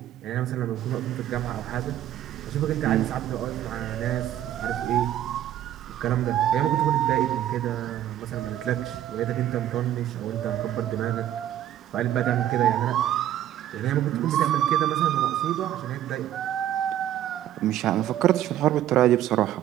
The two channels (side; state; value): left; quieter; 11.9 dB